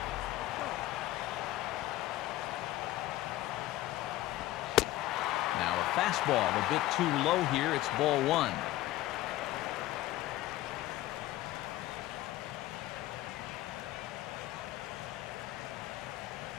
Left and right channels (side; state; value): right; quieter; 16.1 dB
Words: Now a fastball a bit too low here. It's ball 1.